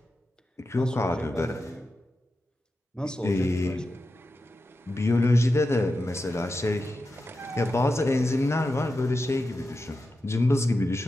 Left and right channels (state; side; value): normal; both; correlation 0.90